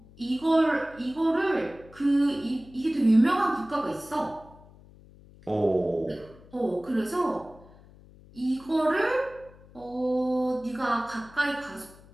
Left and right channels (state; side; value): noise; left; hum, 23 dB below the sound